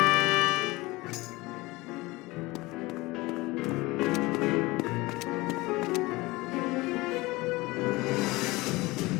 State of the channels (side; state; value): right; quieter; 21.5 dB